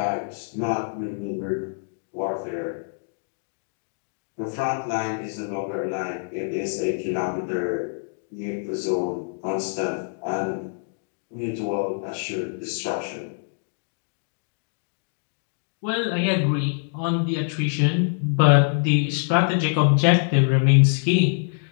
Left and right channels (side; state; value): right; silent; digital silence